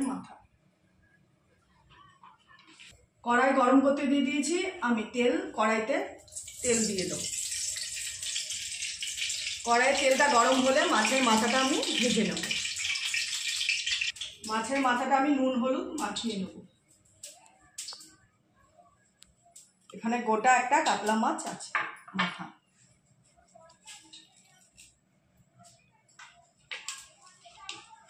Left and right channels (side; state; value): both; identical; correlation 1.00